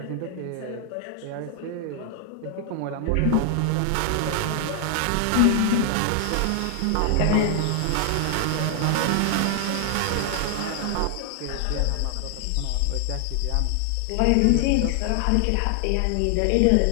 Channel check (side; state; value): both; different; correlation 0.00